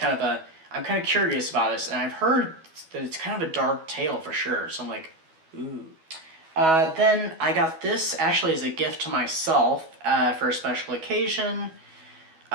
of I'm kind of curious about this, and I've heard that it's kind of a dark tale for sure, so I'm like, ooh. Then I got this actually as a gift to myself for a special occasion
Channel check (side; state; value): left; late; 12 ms